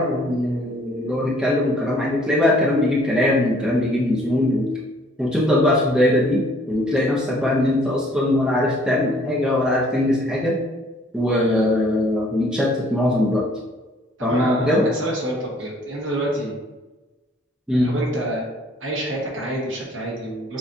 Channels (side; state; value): both; normal; correlation 0.59